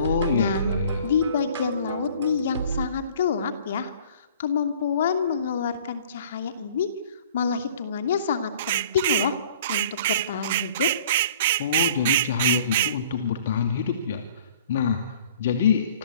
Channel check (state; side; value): inverted; both; correlation -0.50